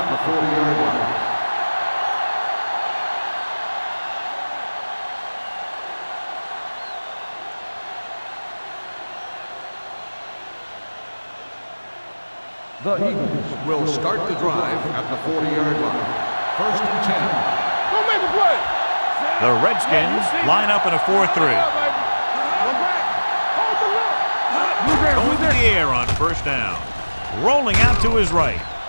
the 40-yard line. The Eagles will start the drive at the 40-yard line. First and 10. Go make a play. The Redskins line up in a 4-3. Go back. Hold the look. Going to the air on first down. Rolling out to his right.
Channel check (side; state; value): both; inverted; correlation -1.00